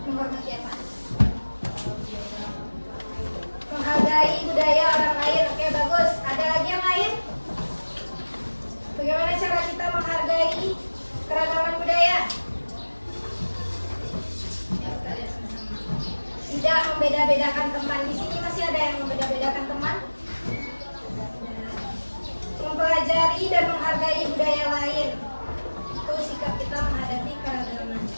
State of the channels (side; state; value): both; inverted; correlation -1.00